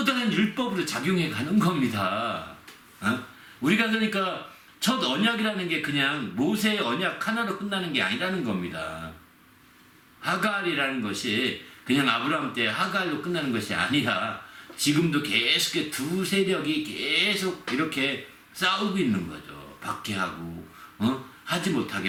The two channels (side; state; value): both; identical; correlation 1.00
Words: 다른 율법으로 작용해 가는 겁니다. 우리가 그러니까 첫 언약이라는 게 그냥 모세의 언약 하나로 끝나는 게 아니라는 겁니다. 하갈이라는 것이 그냥 아브라함 때 하갈로 끝나는 것이 아니라 지금도 계속 두 세력이 계속 이렇게 싸우고 있는 거죠. 박해하고 하지